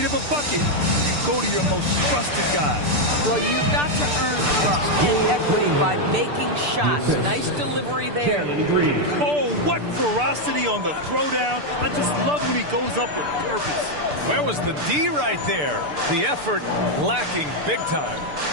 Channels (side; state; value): left; late; 6.8 ms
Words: of a bucket, you go to your most trusted guy. Well, you've got to earn trust and equity by making shots. Nice delivery there. Oh, what ferocity on the throwdown. I just love when he goes up with purpose. Where was the D right there? The effort lacking big time.